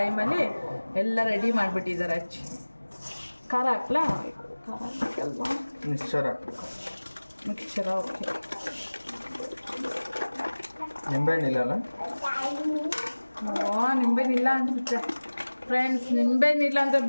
ಎಲ್ಲ ರೆಡಿ ಮಾಡಿಬಿಟ್ಟಿದ್ದಾರೆ. ಖಾರ ಹಾಕ್ಲಾ? ಖಾರ ಹಾಕಲ್ವಾ? ಮಿಕ್ಸ್ಚರ ಓಕೆ. ನಿಂಬೆಹಣ್ಣಿಲ್ಲ? ನಿಂಬೆಹಣ್ಣಿಲ್ಲ ಅನ್ಸುತ್ತೆ ಫ್ರೆಂಡ್ಸ್. ನಿಂಬೆಹಣ್ಣಿಲ್ಲ ಅಂದರೆ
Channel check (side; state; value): both; inverted; correlation -1.00